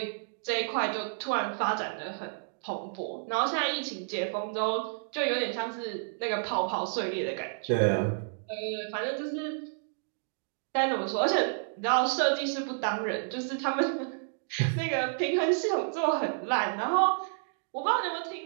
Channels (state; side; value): silent; left; digital silence